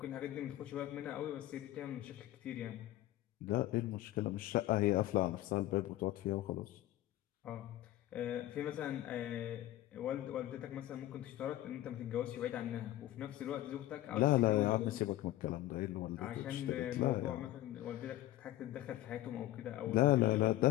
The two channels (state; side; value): quieter; right; 15.0 dB